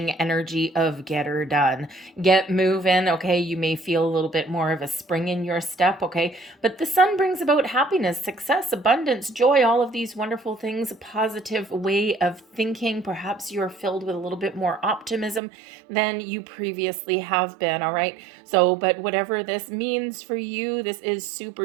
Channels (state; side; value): drops out; left; at 15.4 s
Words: energy of get her done, get moving. Okay, you may feel a little bit more of a spring in your step. Okay, but the sun brings about happiness, success, abundance, joy, all of these wonderful things, a positive way of thinking. Perhaps you're filled with a little bit more optimism than you previously have been. All right, so but whatever this means for you, this is